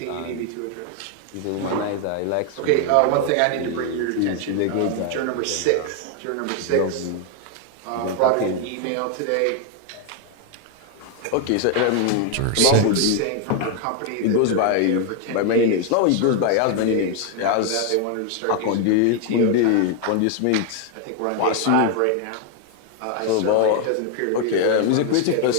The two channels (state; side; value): different; both; correlation 0.01